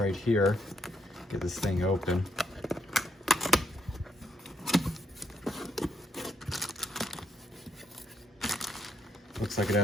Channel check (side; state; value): both; normal; correlation 0.76